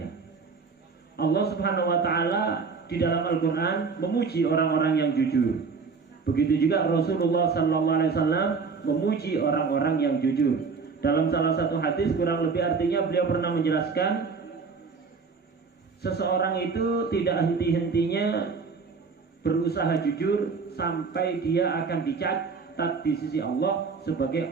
Allah Subhanahu wa Ta'ala di dalam Al-Quran memuji orang-orang yang jujur. Begitu juga Rasulullah SAW memuji orang-orang yang jujur. Dalam salah satu hadis kurang lebih artinya beliau pernah menjelaskan, seseorang itu tidak henti-hentinya berusaha jujur sampai dia akan dicatat di sisi Allah sebagai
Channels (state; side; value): quieter; left; 5.0 dB